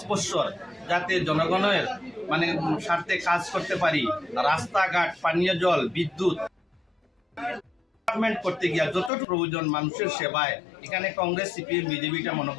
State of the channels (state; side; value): drops out; right; at 9.1 s